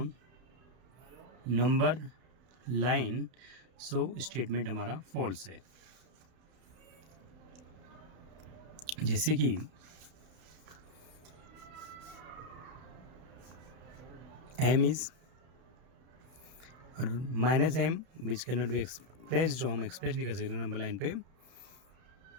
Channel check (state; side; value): late; left; 32 ms